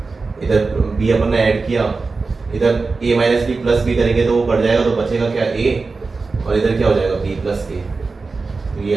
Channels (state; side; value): quieter; left; 4.1 dB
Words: इधर बी अपन ने ऐड किया, इधर ए माइनस बी प्लस बी करेंगे तो वो कट जाएगा, तो बचेगा क्या ए, और इधर क्या हो जाएगा बी प्लस के, तो ये